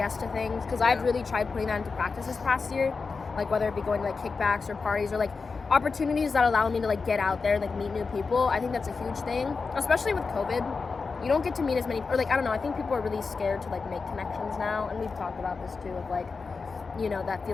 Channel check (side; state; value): right; quieter; 4.6 dB